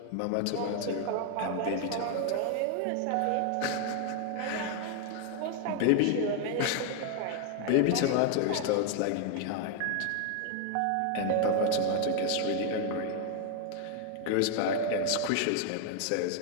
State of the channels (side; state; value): both; different; correlation 0.00